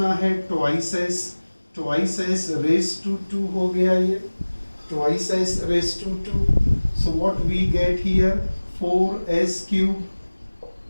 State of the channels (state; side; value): inverted; both; correlation -1.00